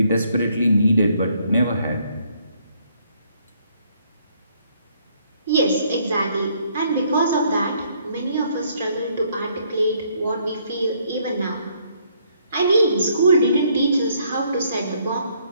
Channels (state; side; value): inverted; both; correlation -0.68